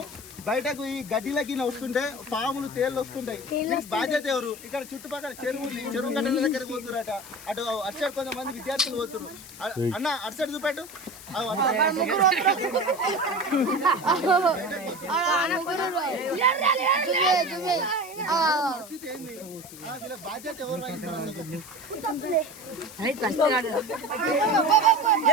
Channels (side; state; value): left; noise; hiss, 16 dB below the sound